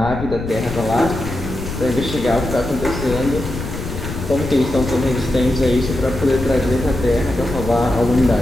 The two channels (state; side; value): noise; left; rumble, 8 dB below the sound